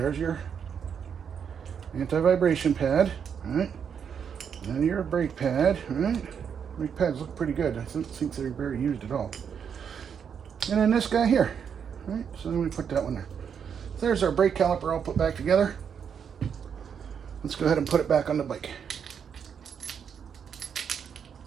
your anti-vibration pad, right? And your brake pad, right? Brake pads look pretty good. I don't think they're very used at all. And then this guy here, right? So then we put that one there. There's our brake caliper all put back together. Let's go ahead and put it back on the bike.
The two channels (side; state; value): left; quieter; 7.4 dB